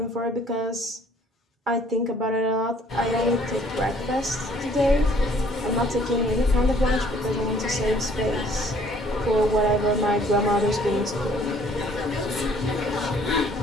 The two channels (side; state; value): both; normal; correlation 0.58